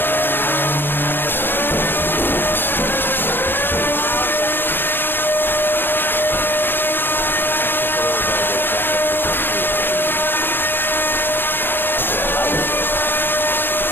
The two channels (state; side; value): late; right; 0.097 ms